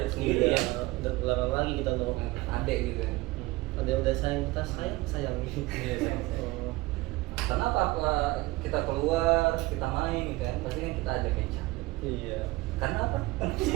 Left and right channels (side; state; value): left; quieter; 20.4 dB